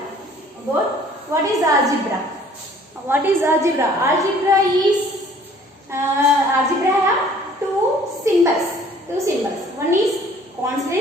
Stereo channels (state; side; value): normal; both; correlation 0.55